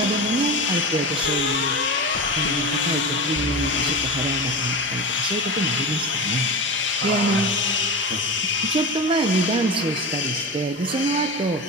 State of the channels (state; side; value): normal; both; correlation 0.25